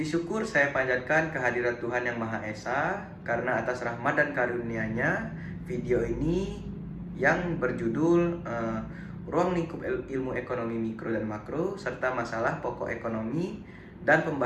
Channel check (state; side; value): identical; both; correlation 1.00